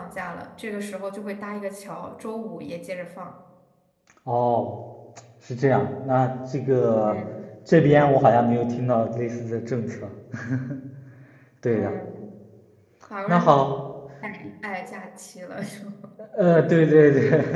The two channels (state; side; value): identical; both; correlation 1.00